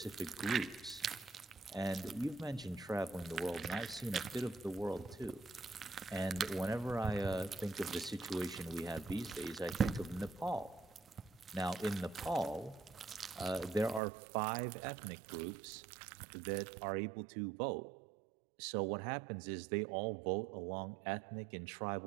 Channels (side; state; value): left; drops out; at 14.0 s